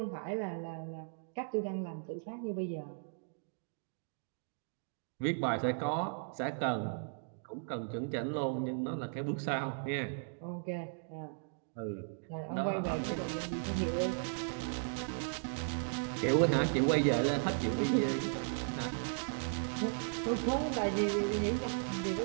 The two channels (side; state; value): left; silent; digital silence